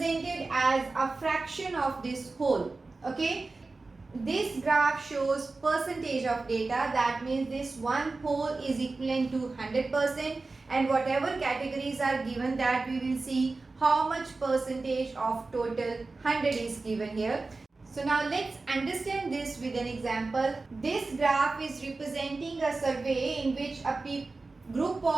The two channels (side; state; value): left; quieter; 3.6 dB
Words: as a fraction of this whole. Okay, this graph shows percentage of data. That means this one whole is equivalent to 100%, and whatever categories are given, that we will see how much percentage of total 100 is given here. So now let's understand this with an example. This graph is representing a survey in which a group